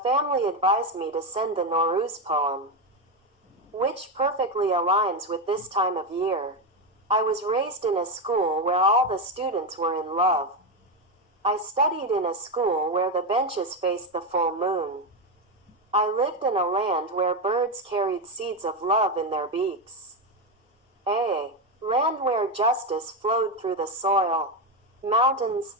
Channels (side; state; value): both; normal; correlation 0.10